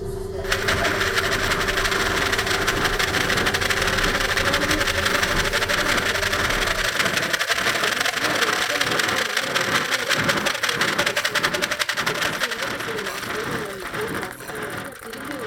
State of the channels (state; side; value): identical; both; correlation 1.00